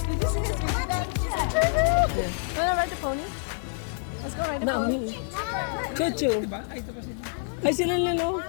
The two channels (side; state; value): right; silent; digital silence